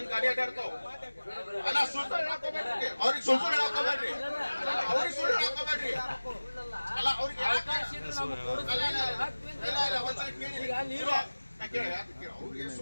ಗಾಡಿ ಅಡ್ಡಾಡ್ತಾವ. ಅಲ್ಲ ಸುಳ್ಳು ಹಾಕೋಬೇಡ್ರಿ, ಅವ್ರಿಗೆ ಸುಳ್ಳು ಹಾಕೋಬೇಡ್ರಿ, ಅವ್ರಿಗೆ ಸುಳ್ಳು ಹಾಕೋಬೇಡ್ರಿ. ಅಲ್ಲ ಅವ್ರಿಗೆ ಅವ್ರಿಗೆ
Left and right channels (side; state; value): both; inverted; correlation -1.00